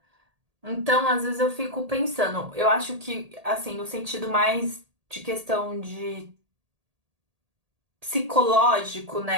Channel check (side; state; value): left; late; 1.8 ms